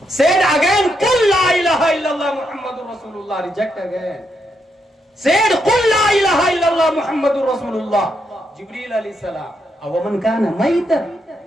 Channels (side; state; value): both; normal; correlation 0.80